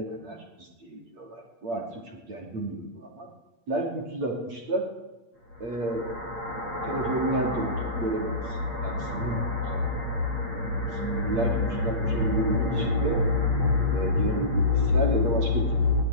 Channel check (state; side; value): late; left; 8.6 ms